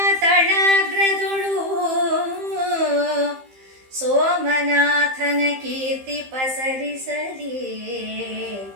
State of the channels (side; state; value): left; late; 15 ms